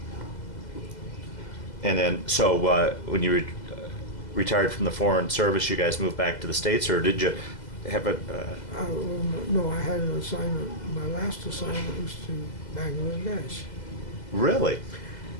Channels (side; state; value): right; late; 2.0 ms